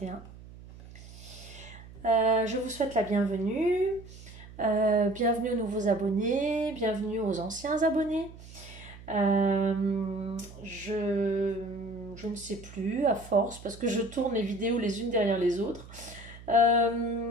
Je vous souhaite la bienvenue. Bienvenue aux nouveaux abonnés, bienvenue aux anciens abonnés. Je ne sais plus à force parce que je tourne les vidéos les unes derrière les autres.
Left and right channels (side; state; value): right; noise; hum, 17 dB below the sound